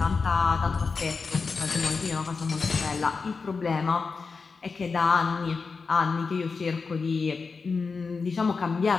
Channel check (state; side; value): quieter; right; 4.7 dB